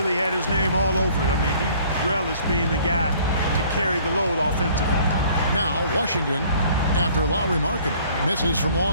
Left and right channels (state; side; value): inverted; both; correlation -0.55